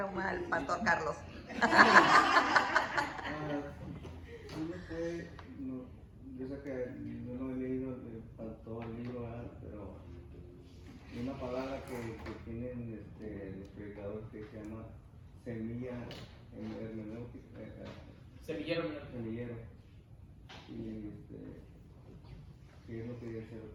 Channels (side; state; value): both; identical; correlation 1.00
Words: el pastor Carlos. Yo sé que yo no he leído, todo el libro, ¿verdad? Pero hay una palabra que tienen los predicadores que se llama semilla hermenéutica. Semillero. Y ¿qué es lo que dice?